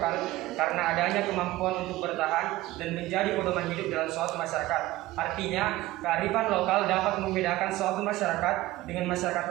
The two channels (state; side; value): quieter; left; 17.4 dB